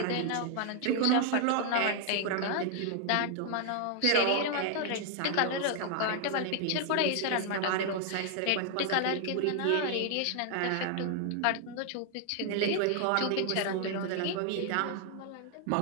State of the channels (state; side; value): different; both; correlation 0.00